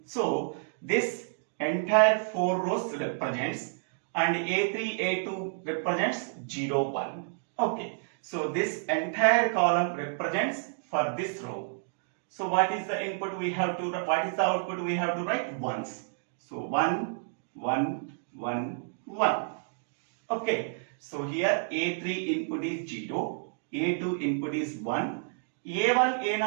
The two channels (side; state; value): left; silent; digital silence